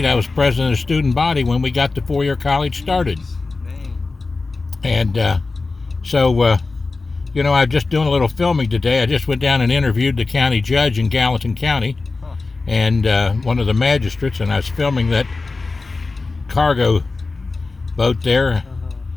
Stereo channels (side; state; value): right; quieter; 3.8 dB